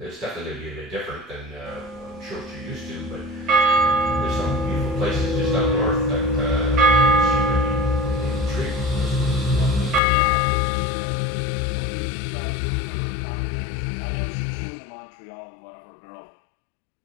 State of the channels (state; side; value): drops out; right; at 10.0 s